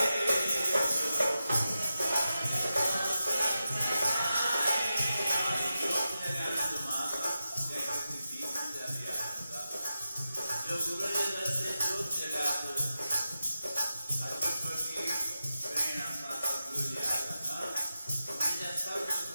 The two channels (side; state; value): both; inverted; correlation -0.91